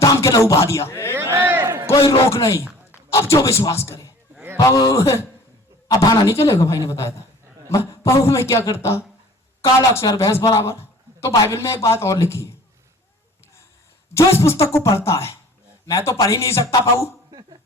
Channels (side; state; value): both; normal; correlation 0.48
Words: दाम के लहू बहा दिया, कोई रोक नहीं। अब जो विश्वास करे। अब भाना नहीं चलेगा, भाई ने बताया था। पाऊ में क्या करता? काला अक्षर भैंस बराबर, तो बाइबल में एक बात और लिखी है, जो इस पुस्तक को पढ़ता है, मैं तो पढ़ ही नहीं सकता पाऊ,